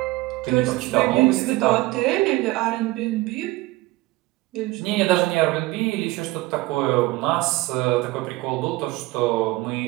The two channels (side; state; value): left; quieter; 20.3 dB